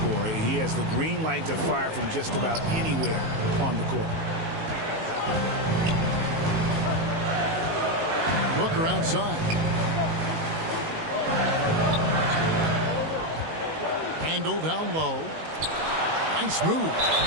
He has the green light to fire from just about anywhere on the court. Booker outside. Randle down low. Nice move.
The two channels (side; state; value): left; late; 19 ms